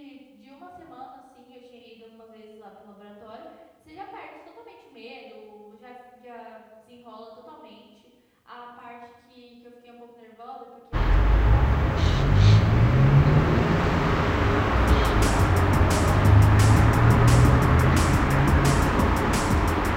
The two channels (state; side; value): identical; both; correlation 1.00